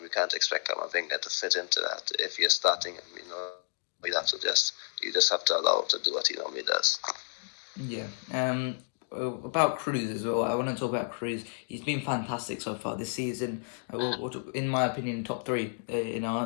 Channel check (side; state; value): right; silent; digital silence